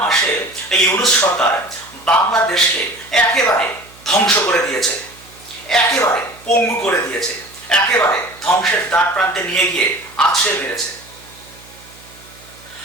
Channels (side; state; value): right; noise; hum, 24 dB below the sound